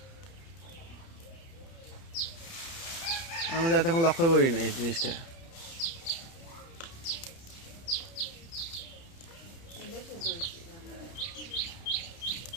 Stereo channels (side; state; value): right; late; 30 ms